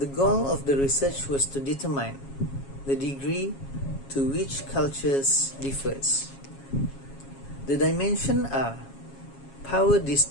goal of the research was to determine the degree to which cultures differs. The dimensions are power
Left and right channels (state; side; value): late; right; 7.3 ms